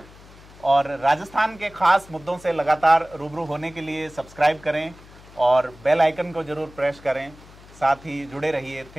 और राजस्थान के खास मुद्दों से लगातार रूबरू होने के लिए सब्सक्राइब करें और बेल आइकन को जरूर प्रेस करें, साथ ही जुड़े रहिए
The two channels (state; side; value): noise; left; hum, 22 dB below the sound